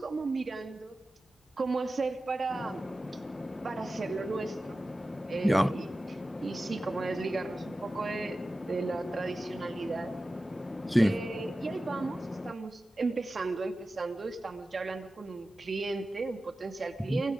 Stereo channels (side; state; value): both; normal; correlation 0.95